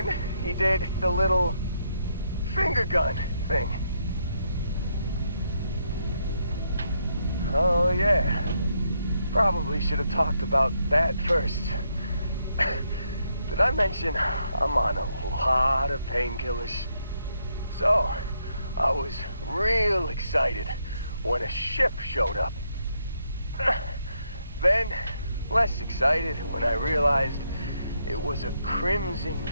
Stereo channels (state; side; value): inverted; both; correlation -0.77